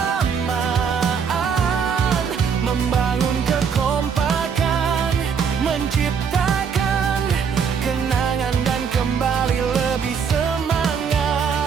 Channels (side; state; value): left; quieter; 6.6 dB